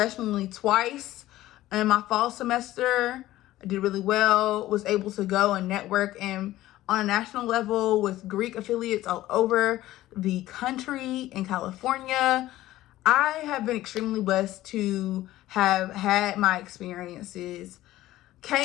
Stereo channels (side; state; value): right; quieter; 15.5 dB